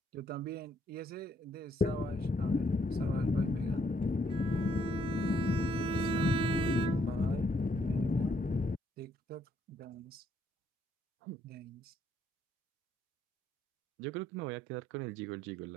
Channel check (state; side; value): normal; both; correlation 0.71